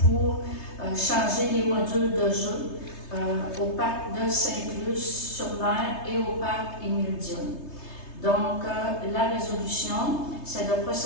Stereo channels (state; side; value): late; right; 3.3 ms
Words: changer les modules de jeu au parc de Saint-Luce-sur-Mer et au parc Émile Dionne. Donc, la résolution, c'est de